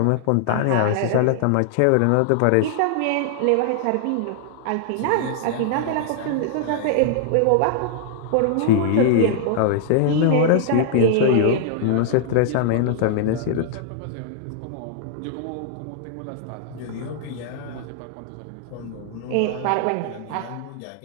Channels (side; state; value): both; different; correlation -0.01